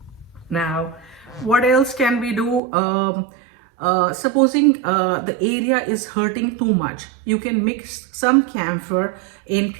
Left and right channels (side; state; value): left; drops out; at 2.6 s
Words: Now, what else can we do? Supposing the area is hurting too much, you can mix some camphor in